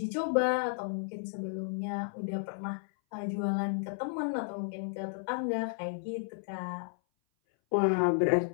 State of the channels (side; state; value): right; silent; 56 dB below the other